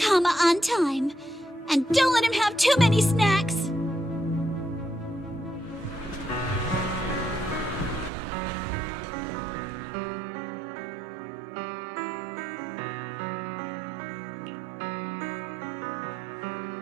on time. And don't let him have too many snacks.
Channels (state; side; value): drops out; left; at 8.1 s